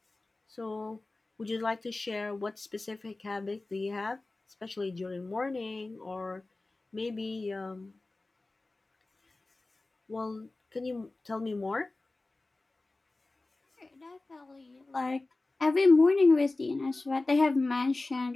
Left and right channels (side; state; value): right; quieter; 3.1 dB